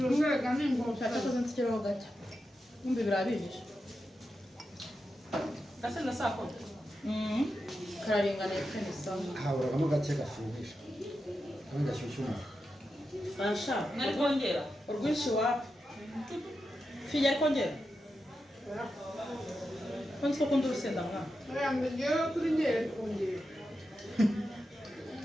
umwega n'ingota Cyakoze nsikiraho gake. Kumbe birabihishe. Gase na sako. Kararinganiye kandi sawa. haburagamo gake gashyuhisha kandi gashyushya umuntu Asha. Nari kongera. Urwinshi wapi? Fija ari kongera? Kwanza ko kundi urusenda mwana. yambe ngewe kuri ngere kongera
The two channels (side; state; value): both; normal; correlation 0.89